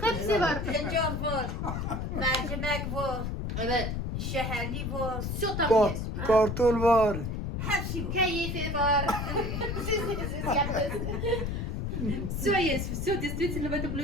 Hepsi var. Tencere var. Mercimek var. Evet. Şeherli var. Все там есть. Kartol var. Hepsi var. Кайфы var. Все есть, все действительно в этом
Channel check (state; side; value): noise; left; rumble, 3 dB below the sound